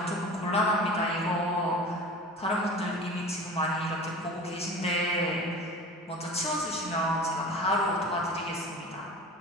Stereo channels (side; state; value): both; normal; correlation 0.37